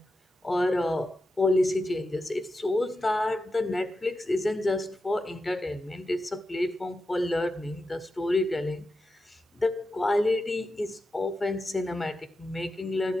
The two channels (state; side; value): normal; both; correlation 0.90